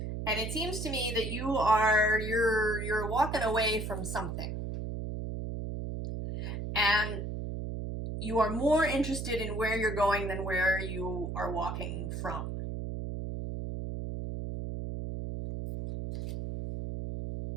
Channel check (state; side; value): noise; right; hum, 5 dB below the sound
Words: And it seems to me that you're walking away from something. And you are more interested in where you're going than where you are walking from.